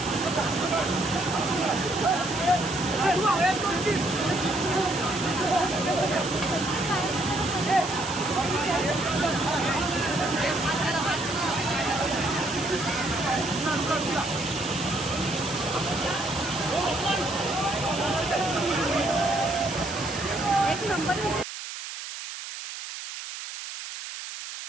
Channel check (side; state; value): right; noise; hiss, 9 dB below the sound